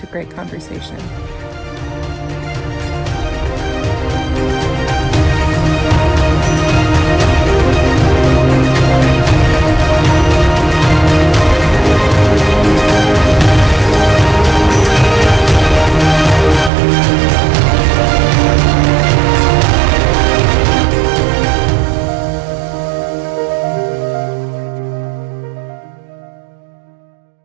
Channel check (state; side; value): drops out; left; at 16.7 s